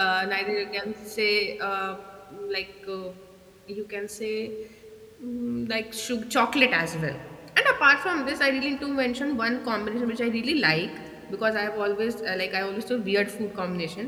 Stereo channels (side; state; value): both; identical; correlation 1.00